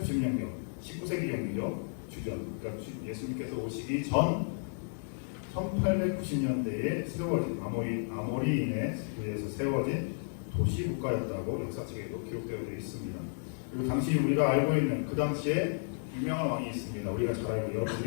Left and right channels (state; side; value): silent; right; digital silence